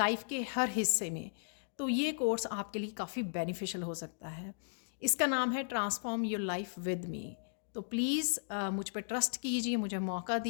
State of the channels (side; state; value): right; silent; digital silence